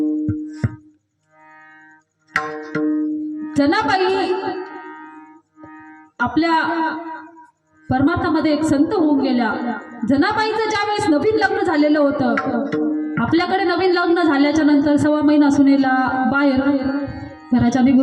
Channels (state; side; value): identical; both; correlation 1.00